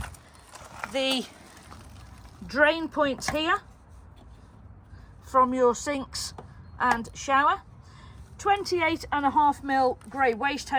the drain points here from your sinks and shower. 28.5mm grey waste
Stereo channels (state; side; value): identical; both; correlation 1.00